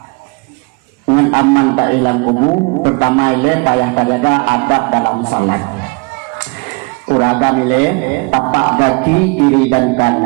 dengan aman tak hilang kubu. Pertama ile payah kajaga adab dalam salat. Uragam ile tapak kaki kiri dan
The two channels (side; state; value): left; quieter; 29.9 dB